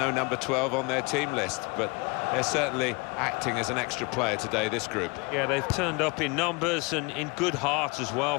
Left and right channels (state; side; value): quieter; right; 28.2 dB